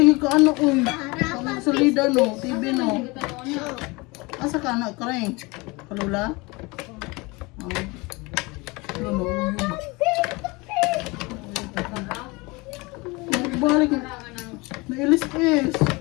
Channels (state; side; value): quieter; right; 25.1 dB